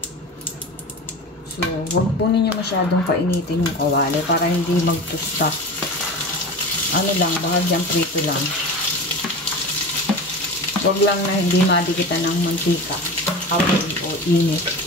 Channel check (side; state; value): both; normal; correlation 0.31